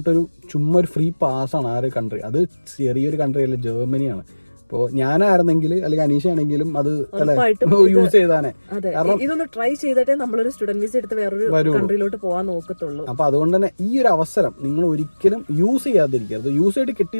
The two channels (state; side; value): inverted; both; correlation -1.00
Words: ചുമ്മാ ഒരു ഫ്രീ പാസ്സാണ് ആ ഒരു കൺട്രി. അത് ചെറിയൊരു കൺട്രി അല്ല, ജർമ്മനിയാണ്. അപ്പോൾ ഞാനായിരുന്നെങ്കിൽ അല്ലെങ്കിൽ അനീഷ ആണെങ്കിലും അത് യൂസ് ചെയ്താനേ. ഇതൊന്ന് ട്രൈ ചെയ്തിട്ടേ നമ്മളൊരു സ്റ്റുഡന്റ് വിസ എടുത്ത് വേറൊരു കൺട്രിയിലോട്ട് പോകാൻ നോക്കത്തുള്ളൂ. അപ്പോൾ അതുകൊണ്ട് തന്നെ ഈ ഒരു അവസരം നിങ്ങൾ ഒരിക്കലും യൂസ് ചെയ്യാതിരിക്കരുത്. യൂസ് ചെയ്തിട്ട്